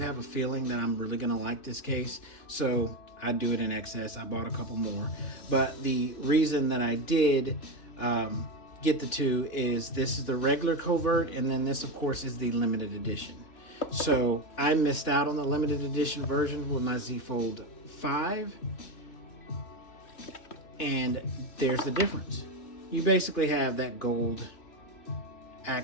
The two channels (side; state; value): right; late; 2.9 ms